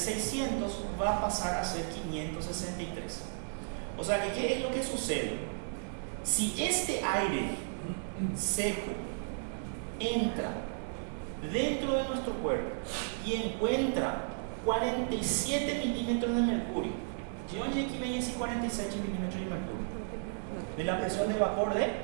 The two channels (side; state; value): left; silent; digital silence